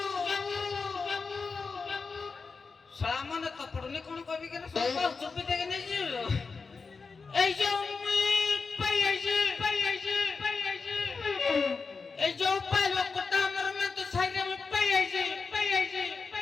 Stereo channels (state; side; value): quieter; right; 4.7 dB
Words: सामान तो पड़ने कोन कभी के सब चुप देके नहीं जी ए जाऊ मुई पाई आई ए जाऊ पालो कोटा मर में तो साइड में पाई आई